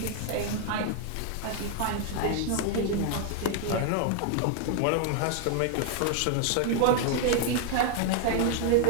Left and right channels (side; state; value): both; different; correlation 0.00